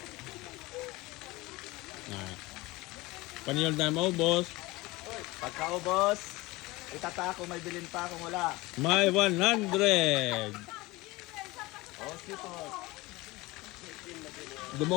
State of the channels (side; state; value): right; quieter; 21.3 dB